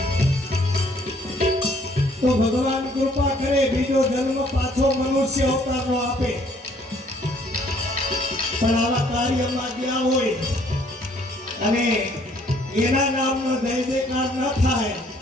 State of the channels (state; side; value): normal; both; correlation 0.62